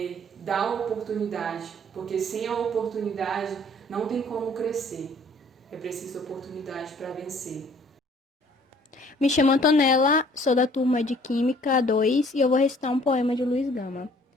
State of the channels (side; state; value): both; normal; correlation 0.57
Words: dar a oportunidade, porque sem a oportunidade não tem como crescer. É preciso oportunidade para vencer. Me chamo Antonella, sou da turma de Química 2 e eu vou recitar um poema de Luiz Gama.